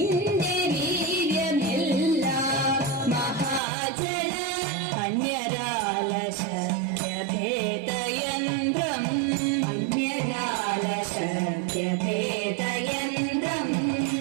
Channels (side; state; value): left; drops out; at 3.6 s